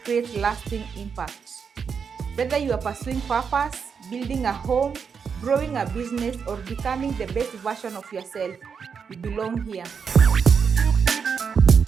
creates lasting impact. Whether you are pursuing purpose, building a home, growing a business, or becoming the best version of yourself, you belong here.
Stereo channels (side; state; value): left; quieter; 6.3 dB